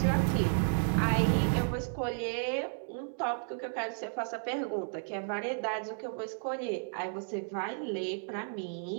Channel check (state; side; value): silent; left; digital silence